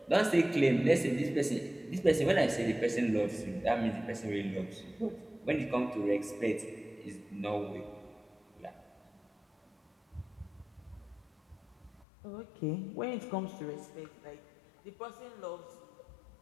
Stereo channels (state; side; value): drops out; right; at 12.1 s